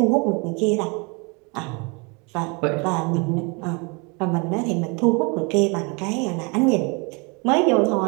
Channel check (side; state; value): left; quieter; 31.1 dB